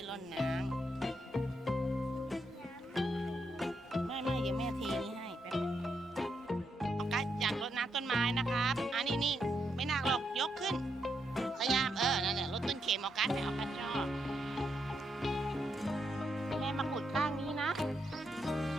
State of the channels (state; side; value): normal; both; correlation 0.80